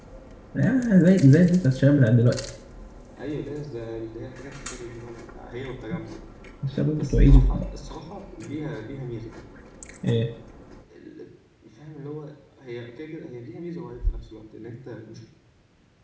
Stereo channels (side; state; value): both; identical; correlation 1.00